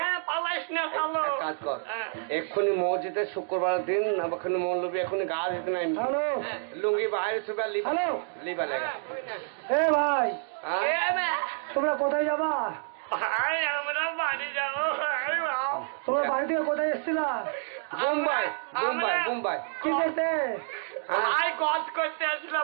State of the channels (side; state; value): left; silent; digital silence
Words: হ্যাঁ পালাইস না, চালো কাজ কর। এক্ষুনি মসজিদে শুক্রবার দিন ওখানে মৌলবী এখনই গা দিতে নাই। হ্যালো, লুঙ্গি বাইরে সুবা লিবা লেগা। এ ভাই, তোমরা কোথায় যাবা? ভাই আমরা বাড়ি যাবো। তোমরা বাড়ি থেকে কোথায় এসছিলা? বোম্বাই বোম্বাই বোম্বাই। কি করতে? ভাই গজ করতে